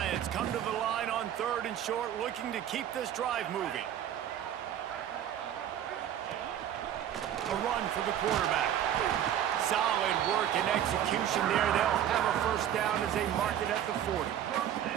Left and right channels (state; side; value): quieter; left; 10.5 dB